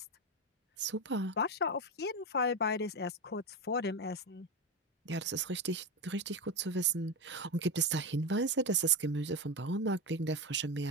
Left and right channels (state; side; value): normal; both; correlation 0.14